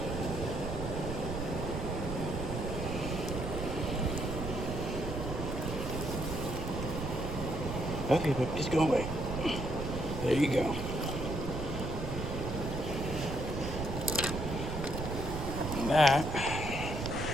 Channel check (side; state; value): right; noise; rumble, 4 dB below the sound